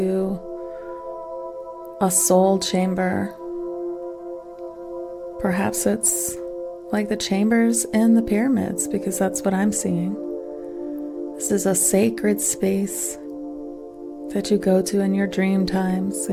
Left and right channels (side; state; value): both; identical; correlation 1.00